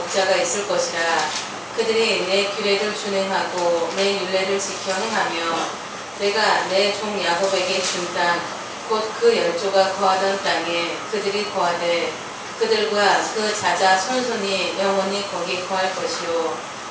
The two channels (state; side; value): identical; both; correlation 1.00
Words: 있을 것이라. 그들이 내 규례를 준행하고 내 율례를 지켜 행하며 내가 내 종 야곱에게 준 땅 곧 그 열조가 거하던 땅에 그들이 거하되 그들과 그 자자 손손이 영원히 거기 거할 것이요